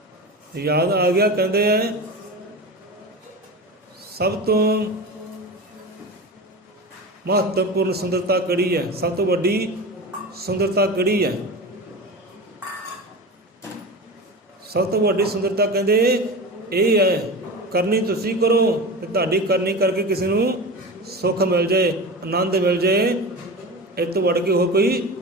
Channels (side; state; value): both; normal; correlation 0.28